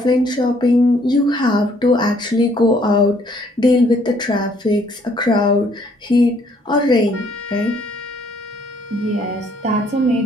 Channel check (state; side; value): normal; both; correlation 0.64